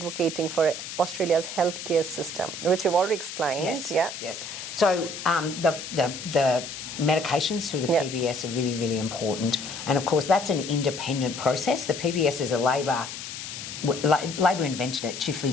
for Australia's healthcare system, which you've already explained? Yes. Yeah. Yes. So the medications through the PBS are really, really important. And of course, that's an independent process. The PBS is a Labor invented it, Chifley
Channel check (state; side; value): noise; left; hiss, 9 dB below the sound